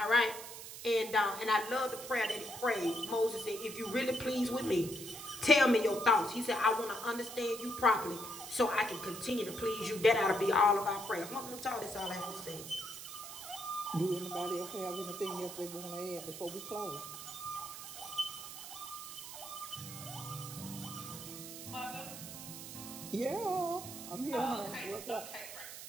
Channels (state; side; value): noise; right; hiss, 11 dB below the sound